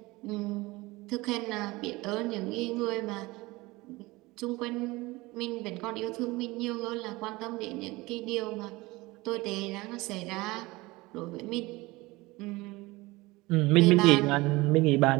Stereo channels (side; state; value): left; quieter; 21.5 dB